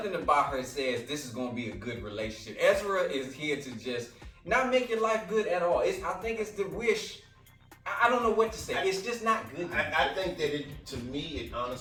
about her says this is gonna be a good relationship. Ezra is here to just not make your life good at all. I think it's the wish. I don't know what to say. It's just not good. I think that to me, it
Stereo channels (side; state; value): both; identical; correlation 1.00